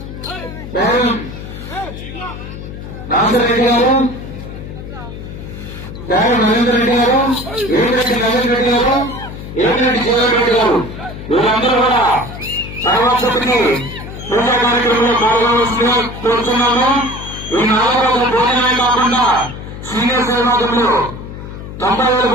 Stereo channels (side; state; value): left; noise; hum, 11 dB below the sound